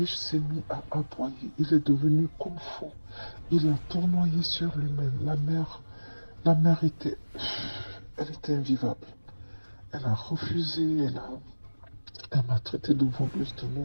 s'est mis à aboyer, il est devenu comme fou. Il a tournoyé sur lui-même. La mère elle était invivable. Elle a refusé, elle m'a traité de voleuse de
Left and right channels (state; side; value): inverted; both; correlation -1.00